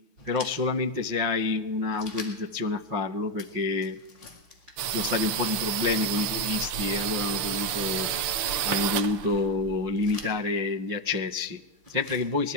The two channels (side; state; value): left; late; 6.2 ms